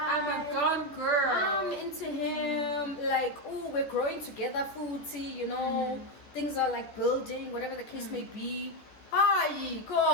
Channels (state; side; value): late; right; 14 ms